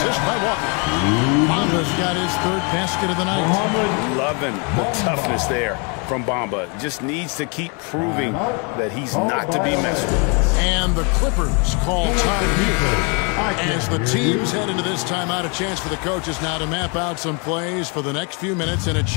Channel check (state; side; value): quieter; right; 34.2 dB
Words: by Walker. Bamba's got his 3rd basket of the night. Loving the toughness there from Bamba. Just needs to keep proving that he's not to be messed with. And the Clippers call time here. As the teams head into this timeout, a chance for the coaches now to map out some plays for the next few minutes and a